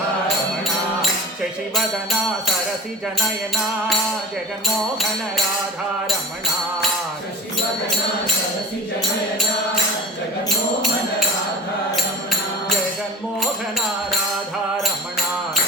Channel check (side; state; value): both; normal; correlation 0.35